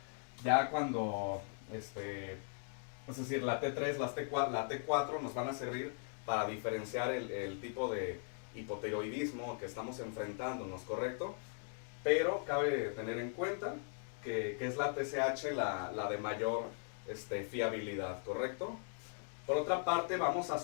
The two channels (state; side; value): silent; right; 52 dB below the other